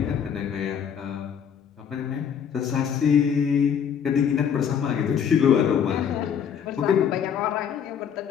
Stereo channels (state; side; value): quieter; right; 8.0 dB